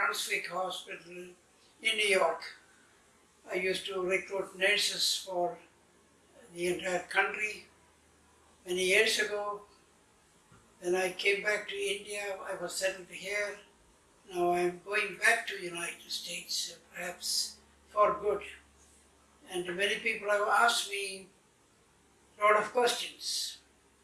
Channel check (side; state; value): both; identical; correlation 1.00